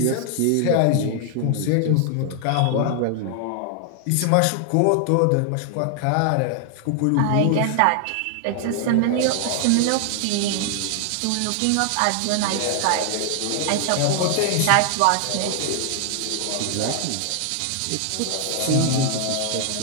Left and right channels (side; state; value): both; different; correlation 0.00